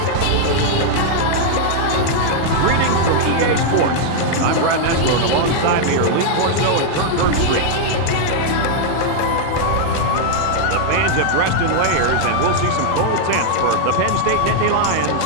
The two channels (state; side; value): different; both; correlation -0.01